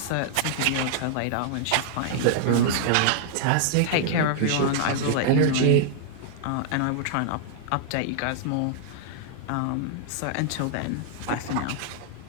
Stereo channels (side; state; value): both; different; correlation -0.01